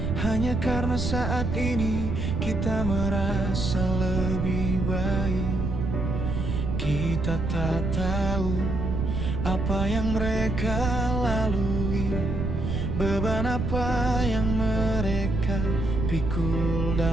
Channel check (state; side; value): noise; right; rumble, 1 dB below the sound